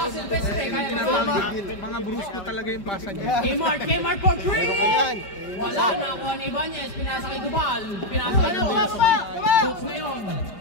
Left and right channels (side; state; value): right; late; 5.1 ms